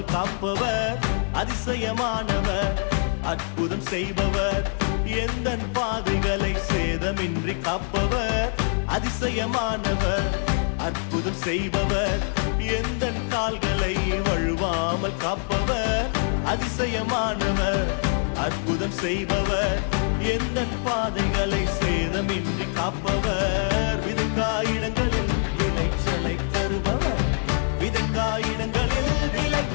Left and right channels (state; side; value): silent; right; 62 dB below the other